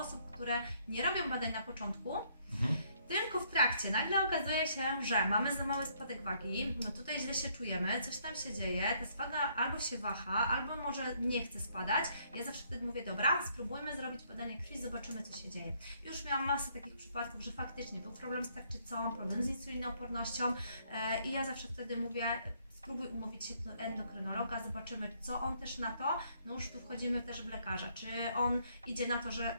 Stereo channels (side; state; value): both; inverted; correlation -0.68